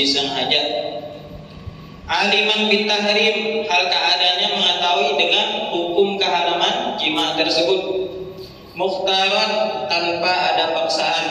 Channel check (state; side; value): identical; both; correlation 1.00